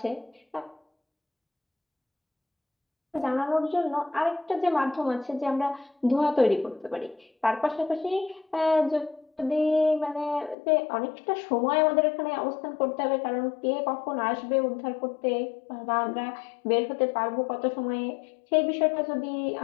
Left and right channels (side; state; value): right; drops out; at 10.6 s